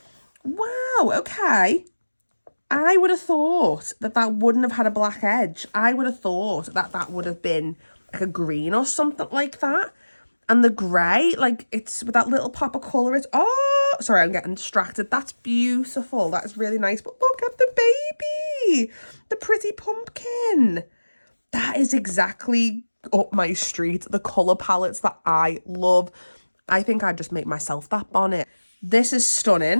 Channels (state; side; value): inverted; both; correlation -1.00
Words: Wow, okay. I would have thought that wouldn't have had a black edge. I would have thought that would have been like a green or something like that. And the grey, like it's with that little pop of colour. It's, oh, sorry, I'm getting distracted. That's beautiful. That is really nice. But look at the baby, the pretty pumpkin. That is exactly up my street. The colour palettes that I love. I think I'd just make myself that bonnet. This is